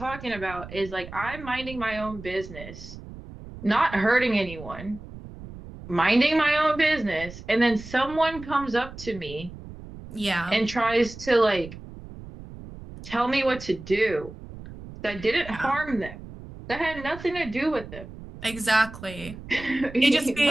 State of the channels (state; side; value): noise; right; rumble, 14 dB below the sound